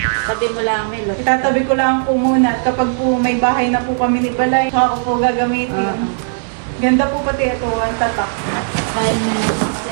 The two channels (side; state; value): left; silent; digital silence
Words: Tabi mo lang, Melot. Itatabi ko lang po muna. At kapag po may bahay na po kami ni Balay, saka ko po gagamitin. Ganda po pati ito, ang tatak.